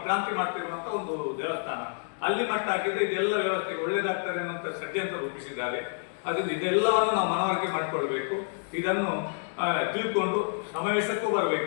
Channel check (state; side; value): silent; right; digital silence